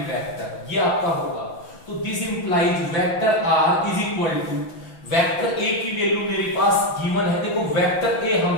vector, ये आपका होगा। तो this implies vector r is equal to vector a की वैल्यू मेरे पास गिवन है। देखो वेक्टर a हम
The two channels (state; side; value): late; right; 6.1 ms